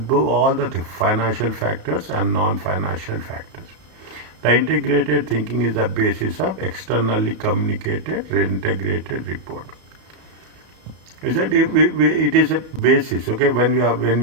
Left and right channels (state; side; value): late; left; 33 ms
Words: all the financial factors and non-financial factors. The integrated thinking is the basis of externally communicated integrated report. Is that it is a basis? Okay, when